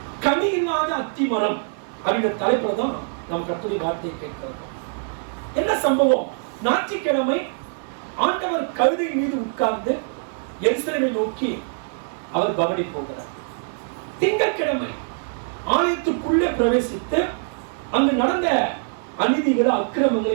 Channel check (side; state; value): left; silent; digital silence